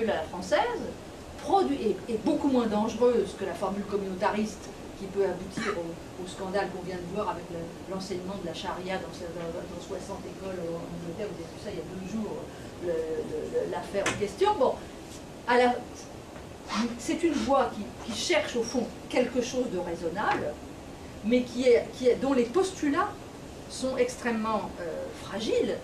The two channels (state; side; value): identical; both; correlation 1.00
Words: à la française, est beaucoup moins dangereuse que la formule communautariste qui peut aboutir au scandale qu'on vient de voir avec l'enseignement de la charia dans 60 écoles en Angleterre. Vous avez vu ça il y a 2 jours, l'affaire en question. Bon, c'est une voie qui cherche au fond quelque chose de raisonnable, mais dont les postulats sont extrêmement fragiles,